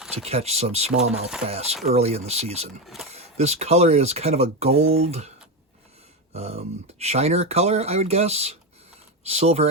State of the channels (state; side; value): normal; both; correlation 0.13